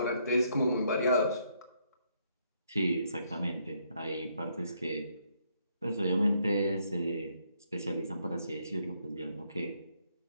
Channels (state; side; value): inverted; both; correlation -0.73